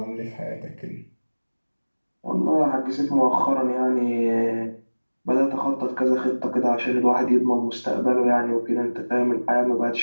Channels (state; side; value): inverted; both; correlation -1.00